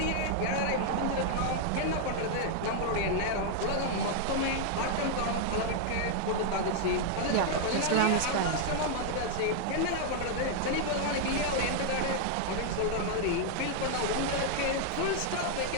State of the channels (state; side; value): different; both; correlation 0.00